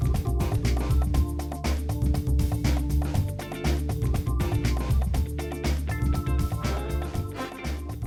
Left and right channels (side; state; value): both; identical; correlation 1.00